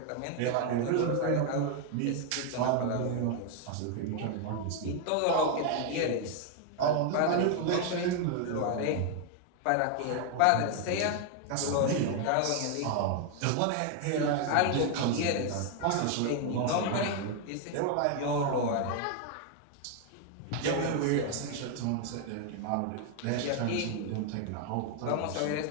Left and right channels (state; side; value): different; both; correlation 0.01